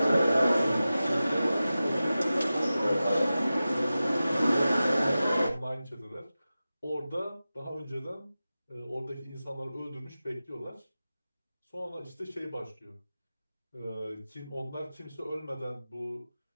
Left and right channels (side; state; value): both; inverted; correlation -0.95